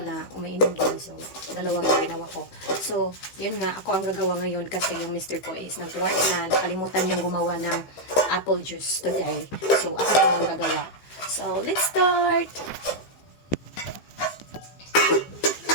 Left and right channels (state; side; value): late; right; 15 ms